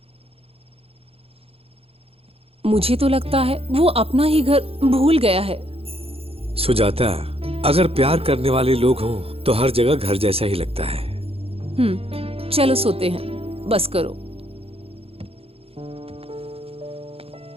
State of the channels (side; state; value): left; late; 0.28 ms